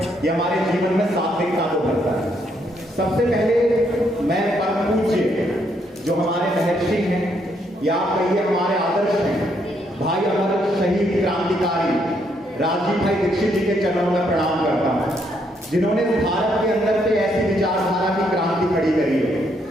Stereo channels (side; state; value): both; normal; correlation 0.73